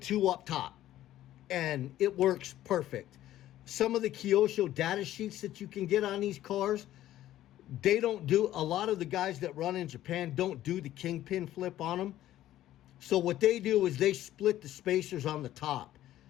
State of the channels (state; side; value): quieter; right; 13.5 dB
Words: up top. And it works perfect. Some of the Kyosho data sheets that you can get on these cars, they don't do, a lot of the guys that run in Japan don't do the kingpin flip on them. So what they do is they split the spacers on the top.